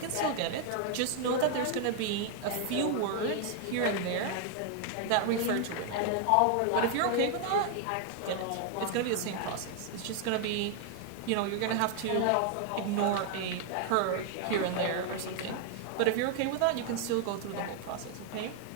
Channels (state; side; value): different; both; correlation 0.00